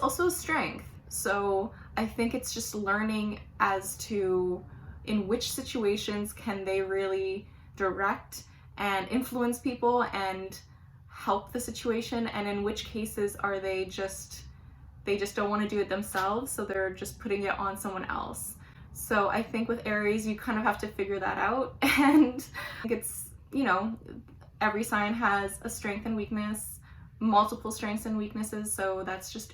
a strength. So I think it's just learning as to in which situations can they really direct and influence people and help the situation, and in which cases are they just don't want to do it themselves, so they're just putting it on someone else. So I think with Aries, you kind of have to figure that out. And it's, every sign has a strength and weakness, multiple strengths and weaknesses, so that's just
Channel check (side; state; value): both; identical; correlation 1.00